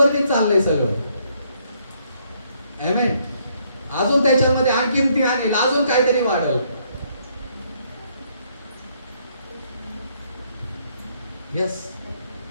चाललंय सगळं. आमेन. अजून त्याच्यामध्ये आणखीन ती आणेल, अजून काहीतरी वाढल. यस.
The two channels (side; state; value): both; inverted; correlation -0.70